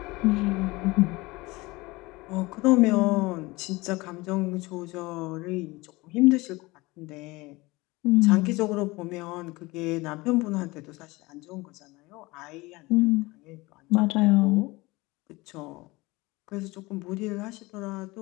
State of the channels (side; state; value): right; quieter; 22.2 dB